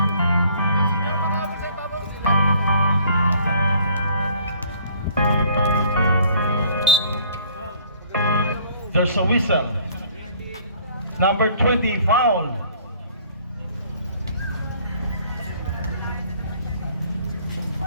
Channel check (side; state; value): both; inverted; correlation -0.57